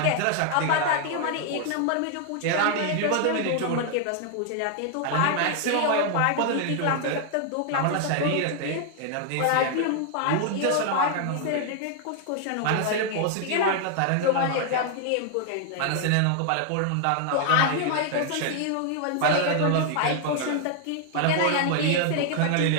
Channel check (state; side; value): different; both; correlation 0.00